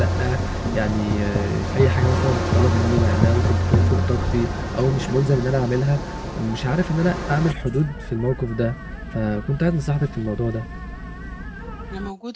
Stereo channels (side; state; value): both; identical; correlation 1.00